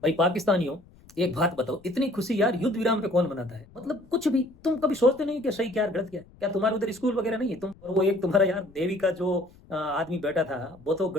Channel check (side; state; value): left; noise; rumble, 25 dB below the sound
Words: भाई पाकिस्तानियों, एक बात बताओ, इतनी खुशी यार युद्ध विराम पे कौन मनाता है? मतलब कुछ भी तुम कभी सोचते नहीं कि सही क्या है, गलत क्या है? क्या तुम्हारे उधर स्कूल वगैरह नहीं है? तुम और वो एक तुम्हारा यार नेवी का जो आदमी बैठा था, वो तो